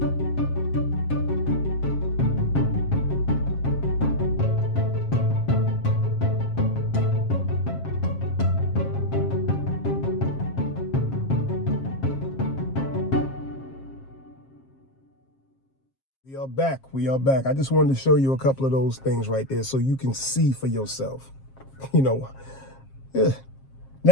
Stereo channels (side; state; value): right; late; 7.5 ms